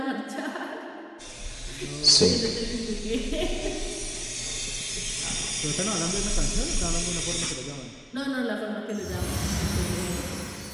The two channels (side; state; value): both; identical; correlation 1.00